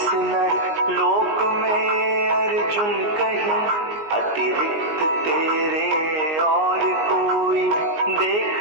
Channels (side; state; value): left; late; 19 ms